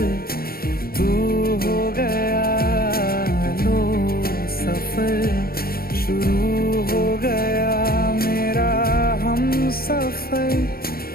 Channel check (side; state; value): right; late; 0.44 ms